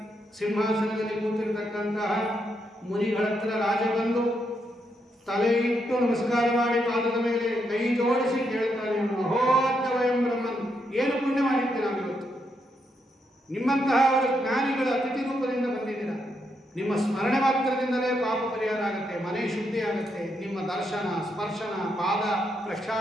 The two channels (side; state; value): both; normal; correlation 0.79